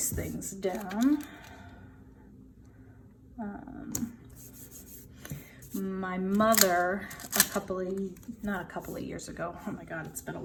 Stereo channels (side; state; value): both; identical; correlation 1.00